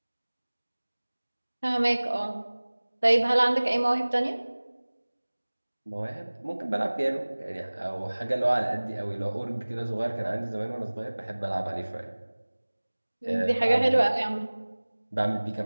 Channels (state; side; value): inverted; both; correlation -1.00